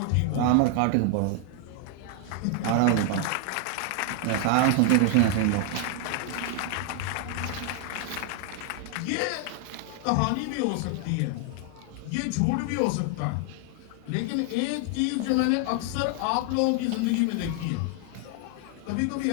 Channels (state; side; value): different; both; correlation 0.00